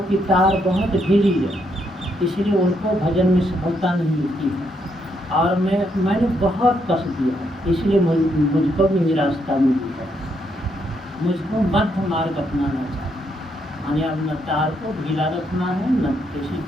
की तार बहुत ढीली है, इसलिए उनको भजन में सफलता नहीं मिलती है। और मैंने बहुत कस दिया है, इसलिए मुझको भी निराशा मिली है। मुझको मध्य मार्ग अपनाना चाहिए, यानी अब न तार को ढीला रखना है, न किसी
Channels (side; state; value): both; normal; correlation 0.76